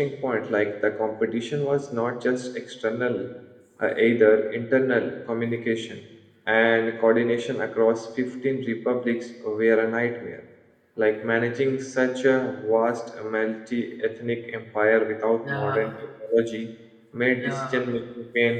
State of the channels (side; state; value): both; identical; correlation 1.00